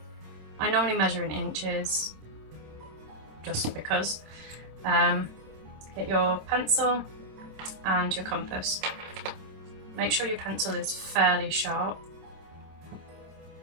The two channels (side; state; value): left; late; 26 ms